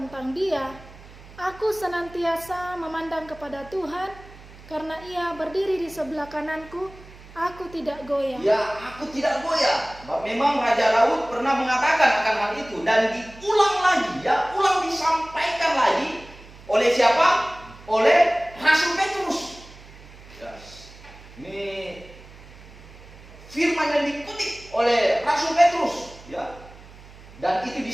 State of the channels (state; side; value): noise; right; hum, 20 dB below the sound